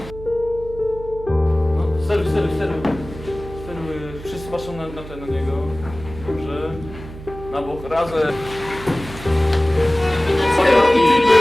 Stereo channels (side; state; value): right; noise; hum, 14 dB below the sound